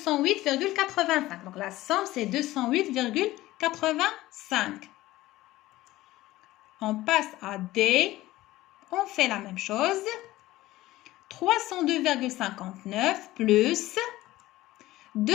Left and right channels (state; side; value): quieter; right; 16.8 dB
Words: Donc, la somme, c'est 208,85. On passe à D. On fait la même chose. 302,59 plus